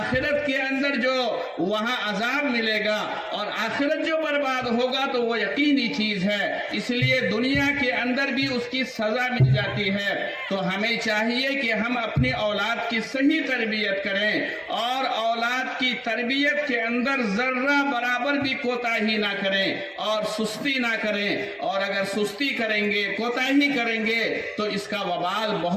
کے اندر جو وہاں عذاب ملے گا اور آخرت جو برباد ہوگا تو وہ یقینی چیز ہے۔ اس لیے دنیا کے اندر بھی اس کی سزا مل جاتی ہے۔ تو ہمیں چاہیے کہ ہم اپنی اولاد کی صحیح تربیت کریں اور اولاد کی تربیت کے اندر ذرہ برابر بھی کوتاہی نہ کریں اور سستی نہ کریں، اور اگر سستی کریں گے، کوتاہی کریں گے تو اس کا وبال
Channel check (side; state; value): both; identical; correlation 1.00